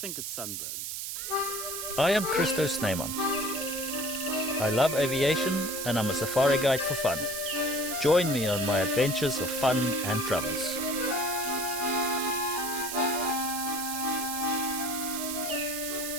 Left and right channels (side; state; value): right; noise; hiss, 5 dB below the sound